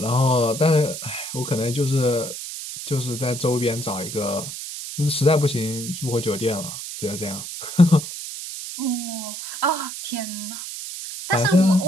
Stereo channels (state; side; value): noise; right; hiss, 8 dB below the sound